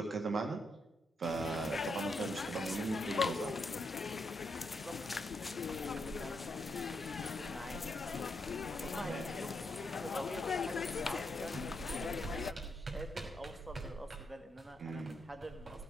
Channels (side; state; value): both; normal; correlation 0.81